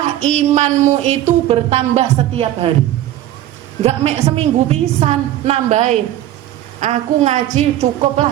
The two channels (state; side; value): quieter; left; 13.3 dB